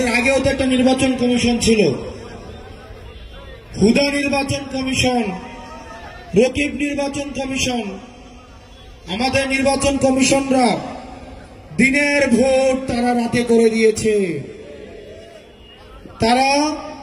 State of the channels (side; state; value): both; identical; correlation 1.00